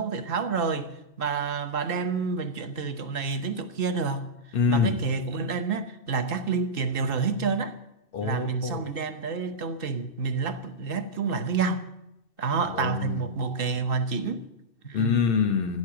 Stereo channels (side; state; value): right; late; 2.6 ms